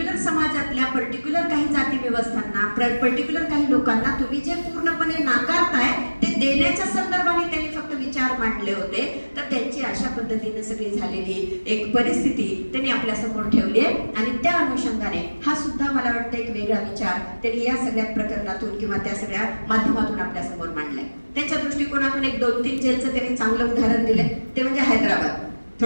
समाजातल्या पर्टिक्युलर काही जाती व्यवस्थांना, पर्टिक्युलर काही लोकांना तुम्ही जे पूर्णपणे नाकारताय ते देण्याच्या संदर्भाने त्यांनी फक्त विचार मांडले होते. तर त्यांची अशा पद्धतीने सगळी झालेली एक परिस्थिती त्यांनी आपल्या समोर ठेवली आहे. आणि त्या अनुषंगाने हा सुद्धा मला वाटतं एक वेगळा विचार त्यांनी या सगळ्या प्रकरणातून किंवा त्या सगळ्या माध्यमातून आपल्या समोर मांडलाय. त्यांच्या दृष्टिकोनातून एक 2-3 जेलचं त्यांनी चांगलं उदाहरण दिलंय, ते म्हणजे हैदराबाद.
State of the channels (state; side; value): inverted; both; correlation -1.00